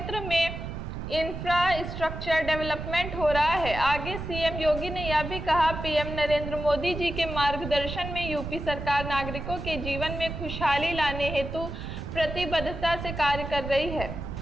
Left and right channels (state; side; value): noise; right; rumble, 7 dB below the sound